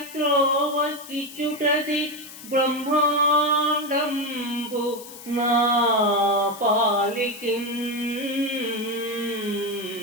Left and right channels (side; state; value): left; noise; hiss, 15 dB below the sound